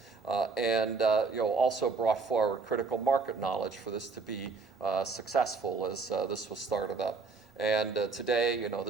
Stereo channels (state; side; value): quieter; left; 4.4 dB